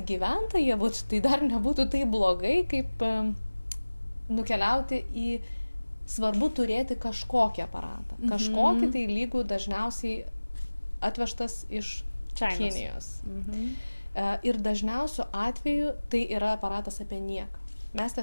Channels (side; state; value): both; inverted; correlation -1.00